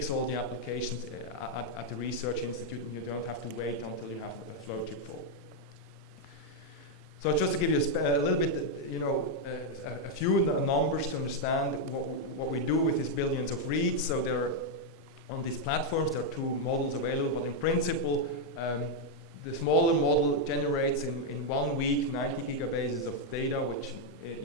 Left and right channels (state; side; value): normal; both; correlation 0.00